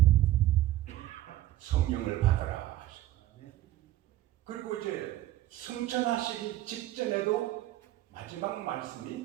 성령을 받아라 하시고 그리고 이제 승천하시기 직전에도 마지막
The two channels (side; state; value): left; quieter; 14.9 dB